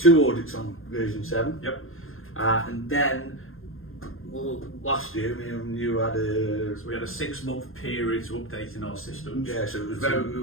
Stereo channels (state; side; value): late; right; 0.60 ms